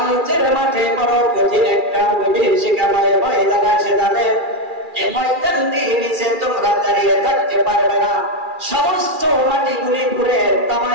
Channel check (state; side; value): late; left; 2.4 ms